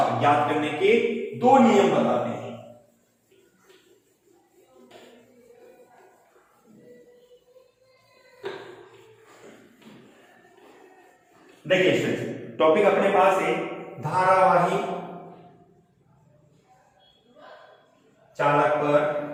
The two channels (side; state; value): both; identical; correlation 1.00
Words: ज्ञात करने के 2 नियम बताते हैं। देखिए टॉपिक अपने पास है धारावाही चालक